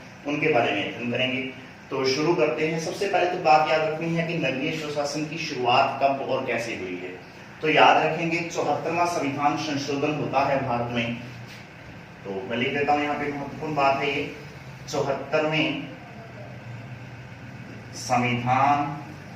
उनके बारे में अध्ययन करेंगे। तो शुरू करते हैं। सबसे पहले तो बात याद रखनी है कि नगरीय स्वशासन की शुरुआत कब और कैसे हुई है। तो याद रखेंगे 74वां संविधान संशोधन होता है भारत में। तो मैं लिख देता हूं, यहाँ पे महत्वपूर्ण बात है ये 74वें संविधान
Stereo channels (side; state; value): both; identical; correlation 1.00